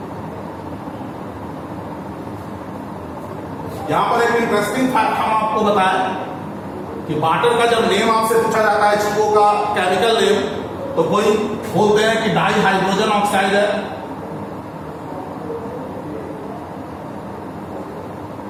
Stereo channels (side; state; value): both; identical; correlation 1.00